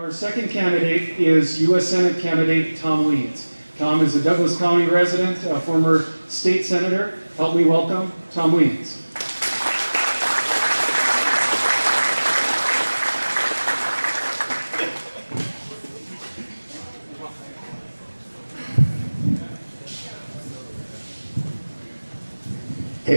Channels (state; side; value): inverted; both; correlation -1.00